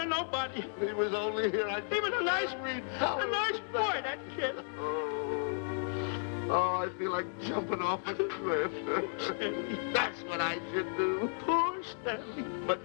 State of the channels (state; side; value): silent; right; 55 dB below the other